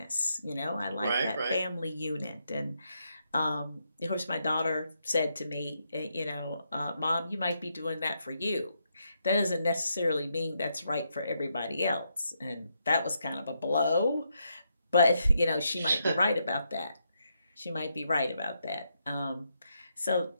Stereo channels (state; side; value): inverted; both; correlation -0.80